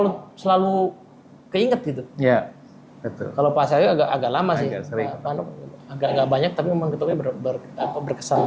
selalu keinget gitu. Iya, betul. Kalau Pak Satyo agak lama sih, Pak Nuk agak nggak banyak, tapi momen ketemunya berkesan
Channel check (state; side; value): identical; both; correlation 1.00